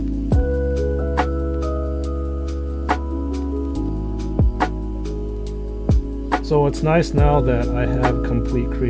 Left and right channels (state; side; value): identical; both; correlation 1.00